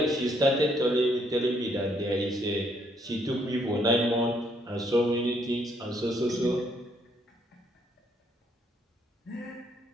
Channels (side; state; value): both; normal; correlation 0.70